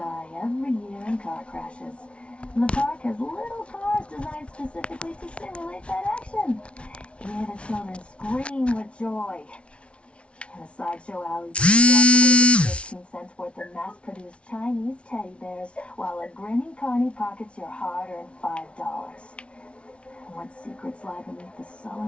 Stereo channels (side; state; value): right; late; 0.060 ms